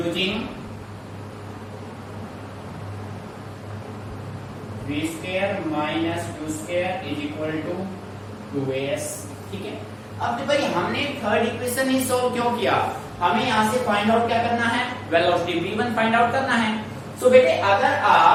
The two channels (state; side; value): identical; both; correlation 1.00